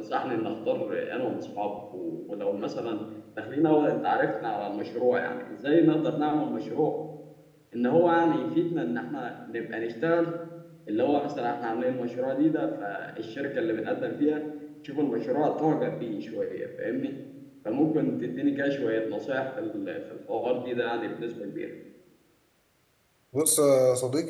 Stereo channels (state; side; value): identical; both; correlation 1.00